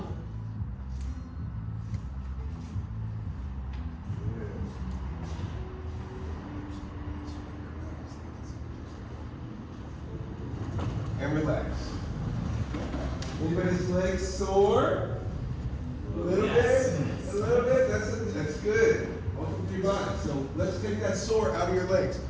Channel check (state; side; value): identical; both; correlation 1.00